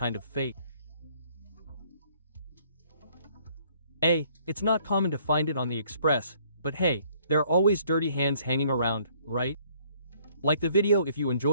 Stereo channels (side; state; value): both; inverted; correlation -0.62